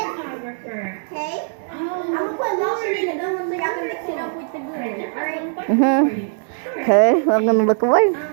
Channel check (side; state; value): left; silent; digital silence